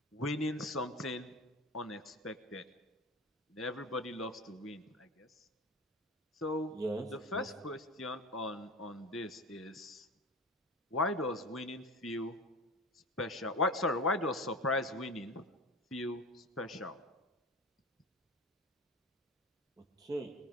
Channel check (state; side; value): normal; both; correlation 0.31